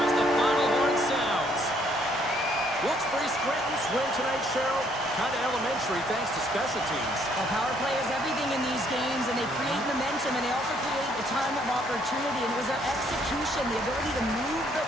as the final horn sounds. Wilkes-Barre Scranton's win tonight, Cheryl. Kind of elementary thanks to special teams. Well, power play is everything in these games, and they create momentum, and they also create a ton of opportunity, and it was their execution, the ability to move the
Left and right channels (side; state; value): both; normal; correlation 0.67